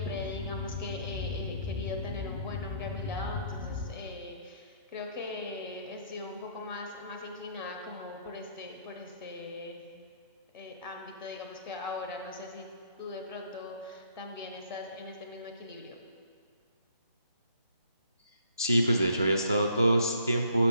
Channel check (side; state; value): both; inverted; correlation -0.65